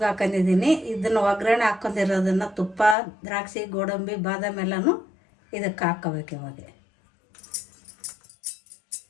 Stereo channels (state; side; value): drops out; right; at 3.0 s